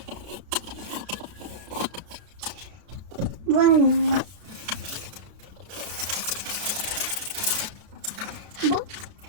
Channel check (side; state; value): left; late; 32 ms